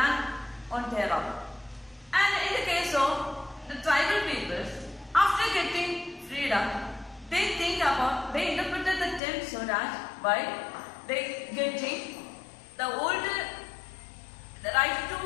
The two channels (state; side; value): drops out; right; at 9.2 s